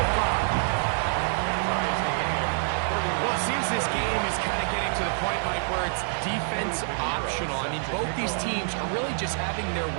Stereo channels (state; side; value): silent; left; 58 dB below the other